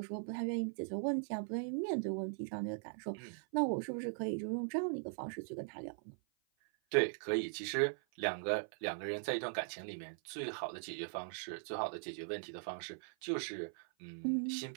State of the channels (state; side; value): silent; left; 51 dB below the other